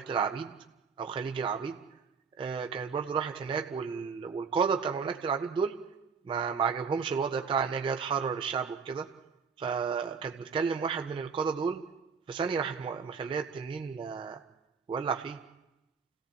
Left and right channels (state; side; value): quieter; left; 5.7 dB